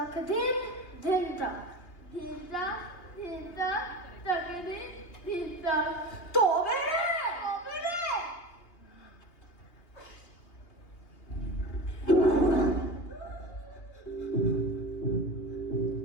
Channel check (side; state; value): right; late; 2.8 ms